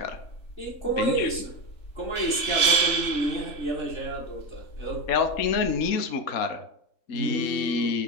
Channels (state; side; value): late; right; 3.6 ms